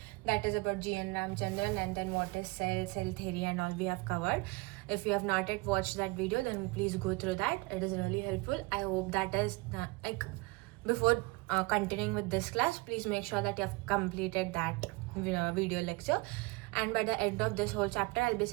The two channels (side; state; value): left; quieter; 24.9 dB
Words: is about G.N. Ramchandran, and then what is cell theory, and all we have covered. If you have not yet watched that video, then please go through that. It is really helpful. I hope that is before continuing with this class, please make sure that you have completed that video lecture. And by the end of this whole chapter, I'll be